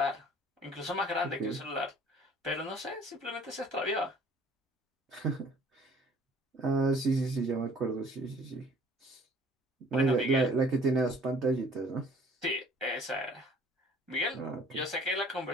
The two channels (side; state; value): both; normal; correlation 0.54